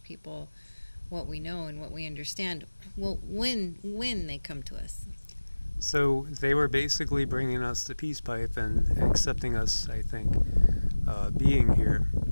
people what we know and what we understand. Well, when they come to us. So they were basically bringing us the peace pipe and accepting us, I think, being here,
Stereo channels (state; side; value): inverted; both; correlation -1.00